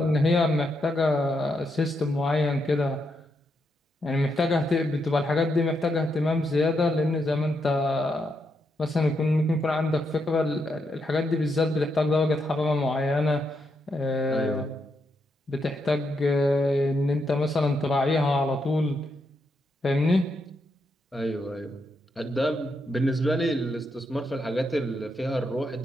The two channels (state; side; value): normal; both; correlation 0.81